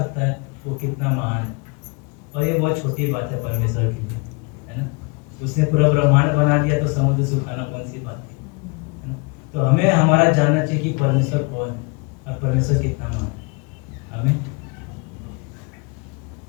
है वो कितना महान है, और ये बहुत छोटी बात है परमेश्वर के लिए, है ना। उसने पूरा ब्रह्मांड बना दिया तो समुद्र सुखाना कौन सी बात थी, है ना। तो हमें हमारा जानना चाहिए कि परमेश्वर कौन है और परमेश्वर कितना महान है। हमें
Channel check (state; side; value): quieter; right; 30.5 dB